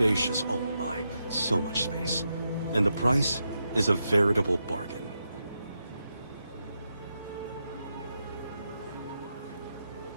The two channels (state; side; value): inverted; both; correlation -0.85